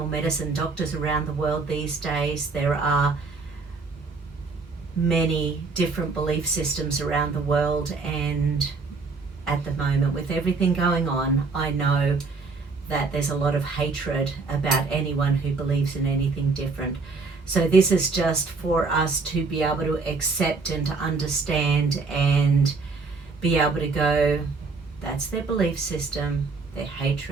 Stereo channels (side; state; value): left; quieter; 4.3 dB